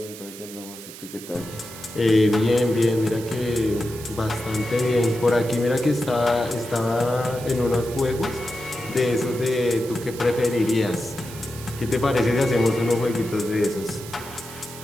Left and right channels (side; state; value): right; noise; hiss, 15 dB below the sound